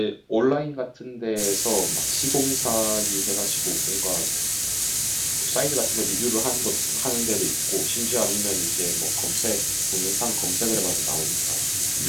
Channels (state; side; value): identical; both; correlation 1.00